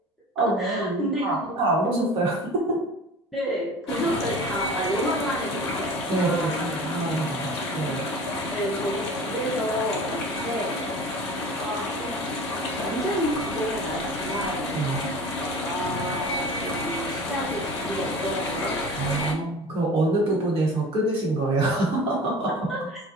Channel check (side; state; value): both; normal; correlation 0.40